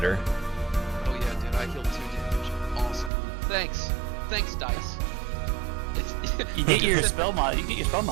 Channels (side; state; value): left; drops out; at 3.1 s